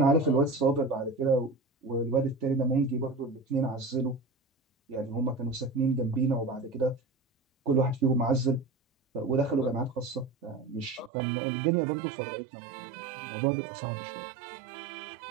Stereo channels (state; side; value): drops out; left; at 11.1 s